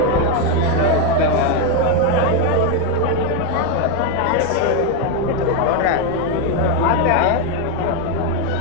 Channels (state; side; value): different; both; correlation 0.02